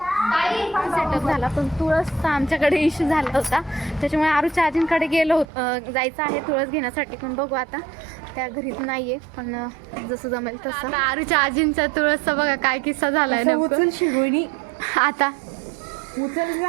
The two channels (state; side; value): drops out; left; at 5.5 s